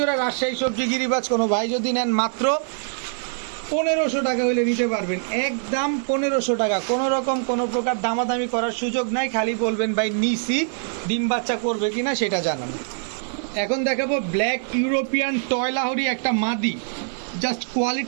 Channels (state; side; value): silent; left; 63 dB below the other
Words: রাজশাহী সবজি গিরিবাজ কোনো ভাই যদি নেন মাত্র 1500 টাকা হইলে নিতে পারবেন, একদম 1500 টাকা। কোনো রকম কোনো প্রকার দামাদামি করার সুযোগ নাই, খালি বলবেন ভাই নিসি, ডিম বাচ্চা করবে কিনা সেটা জানান। এখন দেখাবো ব্ল্যাক ইউরোপিয়ান টয়লাহরি একটা মাদি, জাস্ট